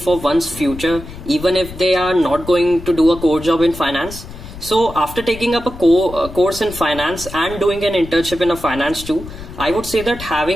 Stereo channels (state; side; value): noise; left; rumble, 13 dB below the sound